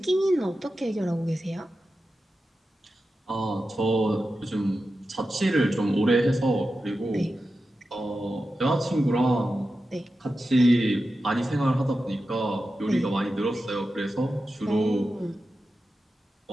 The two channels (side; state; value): both; normal; correlation 0.92